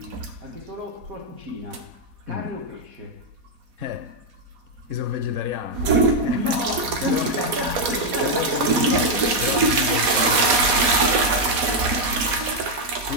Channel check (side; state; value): left; late; 4.2 ms